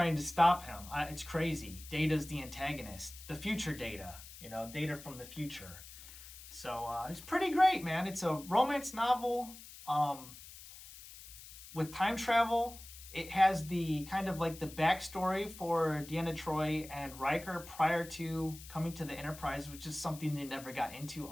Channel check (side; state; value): left; noise; hiss, 16 dB below the sound